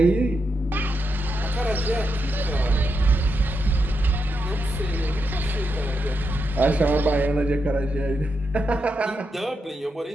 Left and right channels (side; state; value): both; normal; correlation 0.85